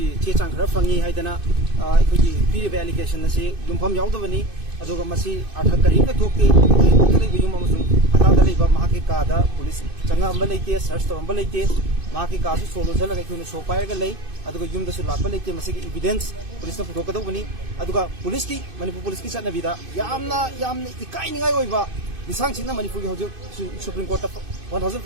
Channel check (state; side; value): late; left; 2.5 ms